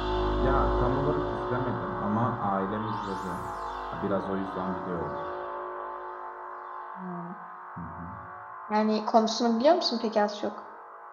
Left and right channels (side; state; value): both; identical; correlation 1.00